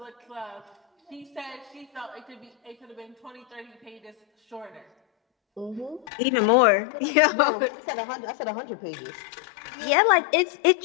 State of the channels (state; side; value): drops out; right; at 6.1 s